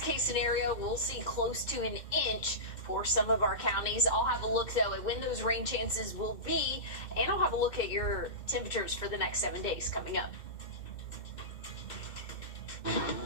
case scenario, we'll see close to an inch for some of our counties. I'll have a look, though, at when those rain chances will be, and I'll have a look at your temperatures for the next 7 days coming up.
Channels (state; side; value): late; right; 2.1 ms